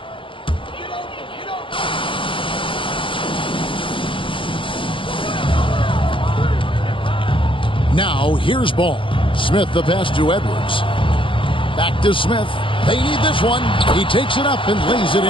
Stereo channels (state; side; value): late; right; 0.25 ms